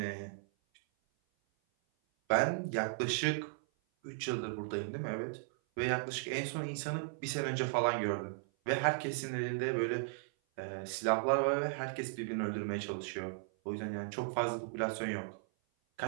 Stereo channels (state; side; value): silent; left; 54 dB below the other